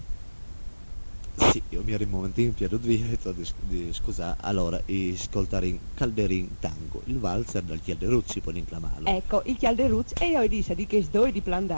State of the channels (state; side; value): inverted; both; correlation -1.00